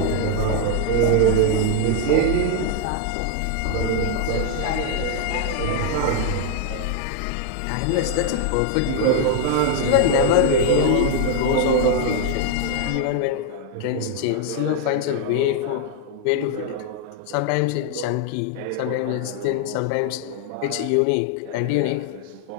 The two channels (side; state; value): both; different; correlation 0.00